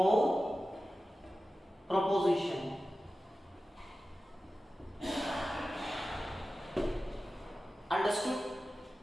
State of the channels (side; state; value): both; normal; correlation 0.94